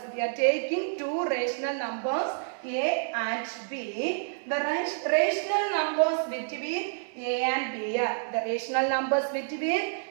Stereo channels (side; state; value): left; silent; digital silence